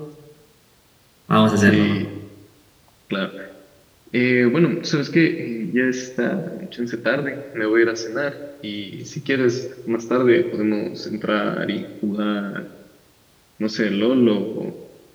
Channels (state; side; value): identical; both; correlation 1.00